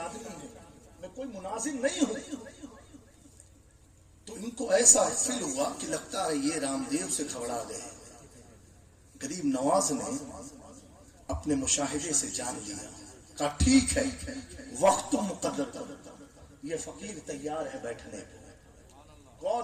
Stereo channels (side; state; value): both; identical; correlation 1.00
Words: ہوں، میں کوئی مناظر نہیں ہوں. تو ان کو ایسا فیل ہوا کہ لگتا ہے یہ رام دیو سے گھبرا گئے. غریب نواز نے اپنے مشاہدے سے جان لیا، کہا ٹھیک ہے وقت تو مقرر کر، یہ فقیر تیار ہے بیٹھنے کو. کون